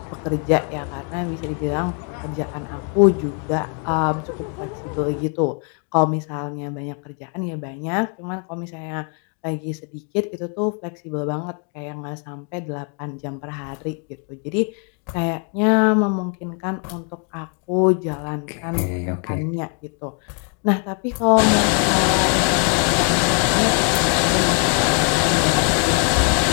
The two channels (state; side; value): quieter; right; 39.9 dB